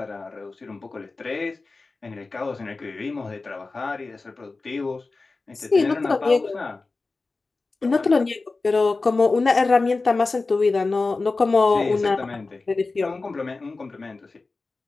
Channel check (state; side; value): quieter; right; 3.7 dB